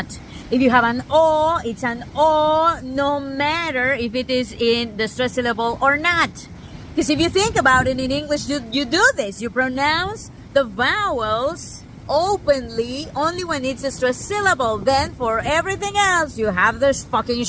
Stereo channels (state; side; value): identical; both; correlation 1.00